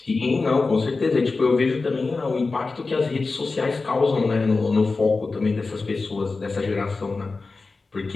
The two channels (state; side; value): quieter; right; 3.9 dB